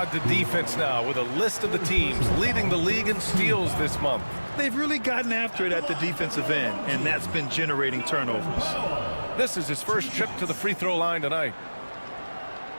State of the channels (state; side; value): inverted; both; correlation -1.00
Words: to defense now with a list of the teams leading the league in steals this month. They've really gotten after it at the defensive end, and that's been generating turnovers. This is his first trip to the free throw line tonight.